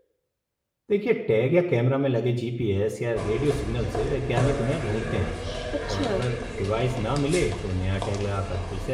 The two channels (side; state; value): both; identical; correlation 1.00